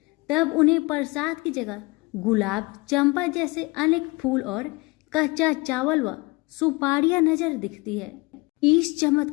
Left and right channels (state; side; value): quieter; right; 25.0 dB